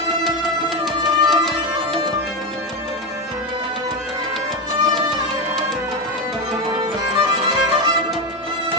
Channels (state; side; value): normal; both; correlation 0.14